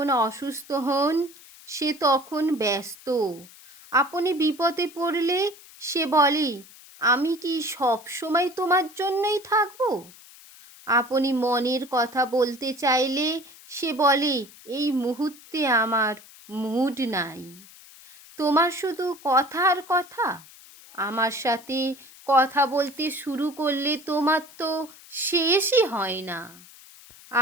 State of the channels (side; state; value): left; noise; hiss, 21 dB below the sound